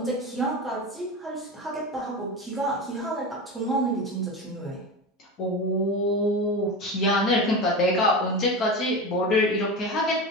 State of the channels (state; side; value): normal; both; correlation 0.24